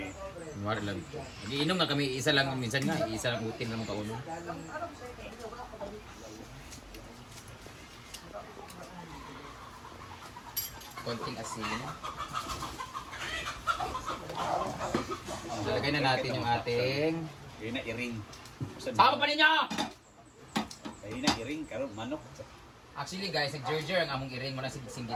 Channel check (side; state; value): both; identical; correlation 1.00